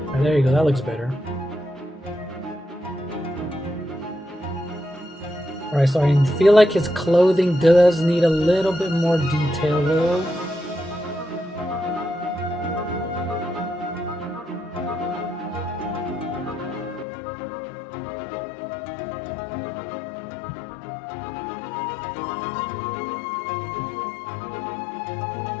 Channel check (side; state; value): right; drops out; at 17.1 s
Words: There you go, that looks better. Alright, so I feel like his clothing does need a little bit more detail though.